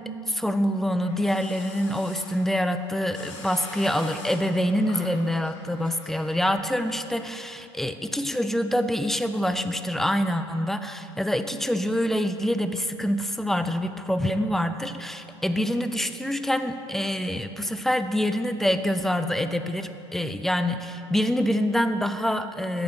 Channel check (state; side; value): normal; both; correlation 0.86